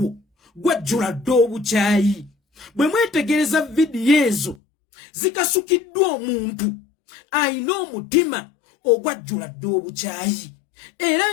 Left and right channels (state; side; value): drops out; right; at 4.5 s